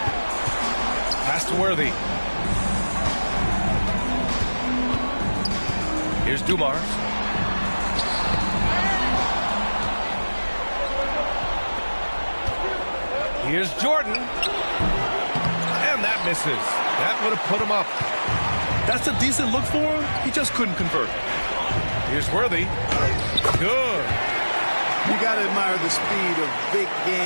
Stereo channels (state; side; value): inverted; both; correlation -1.00